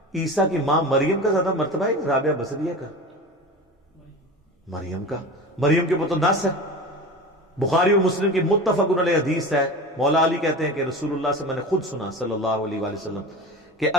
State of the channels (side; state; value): both; normal; correlation 0.31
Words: عیسیٰ کی ماں مریم کا زیادہ مرتبہ ہے رابعہ بصریہ کا؟ مریم کے اوپر تو نص ہے، بخاری اور مسلم کی متفق علیہ حدیث ہے. مولا علی کہتے ہیں کہ رسول اللہ سے میں نے خود سنا صلی اللہ علیہ وآلہ وسلم کہ